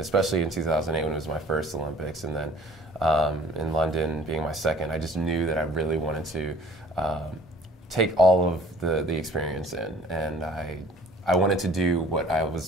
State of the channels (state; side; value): normal; both; correlation 0.51